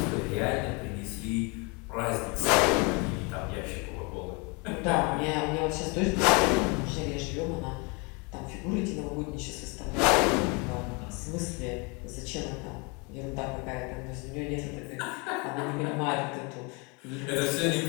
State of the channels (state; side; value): quieter; right; 30.5 dB